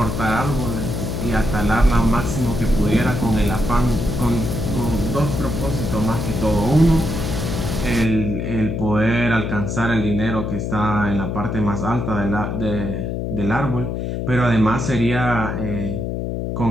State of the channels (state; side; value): noise; left; hum, 3 dB below the sound